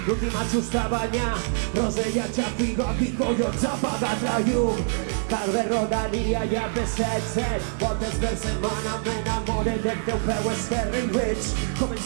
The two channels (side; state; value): left; silent; digital silence